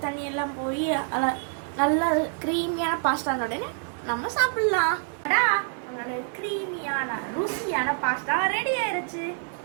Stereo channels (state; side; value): silent; left; 58 dB below the other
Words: தண்ணி எல்லாம் போய் நல்லா க்ரீமியான பாஸ்தா உடனே நம்ம சாப்பிடலாம். க்ரீமியான ருசியான பாஸ்தா ரெடி ஆயிருச்சு.